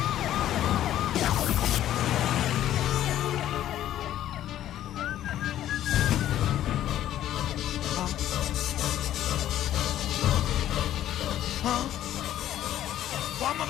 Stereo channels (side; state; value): right; quieter; 12.3 dB